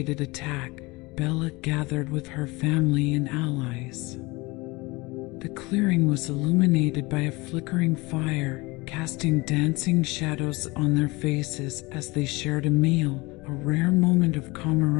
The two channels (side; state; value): right; quieter; 23.7 dB